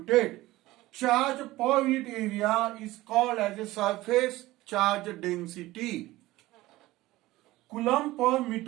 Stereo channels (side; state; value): left; quieter; 17.8 dB